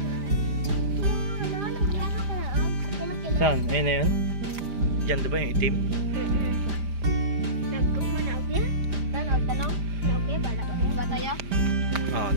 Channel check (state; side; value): late; left; 5.0 ms